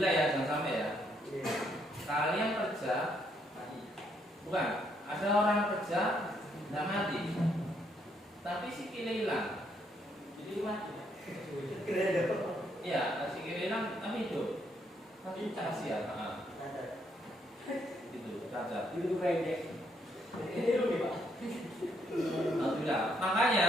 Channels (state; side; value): normal; both; correlation 0.73